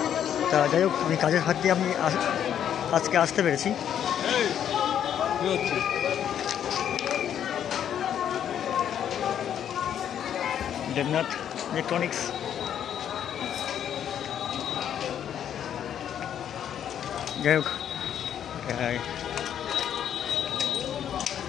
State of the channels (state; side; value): quieter; right; 9.5 dB